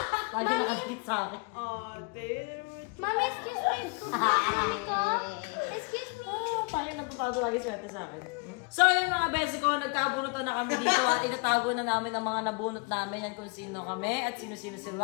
Lagi nakakit sa akin. Mami, excuse me. Mami ko. Excuse me. Parang natutado lagi swerte sa akin. So yun mga besi ko, nagkabunutan na kami dito at itatago na namin ang mga nabunot namin yan kung sino kami at sino-sino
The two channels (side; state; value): right; quieter; 33.4 dB